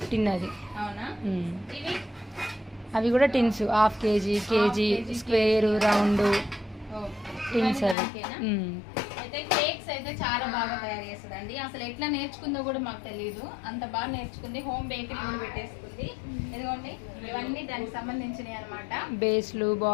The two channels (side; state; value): right; drops out; at 8.0 s